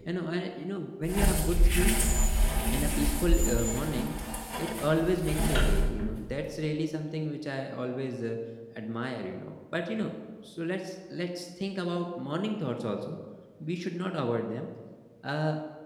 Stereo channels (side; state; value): both; identical; correlation 1.00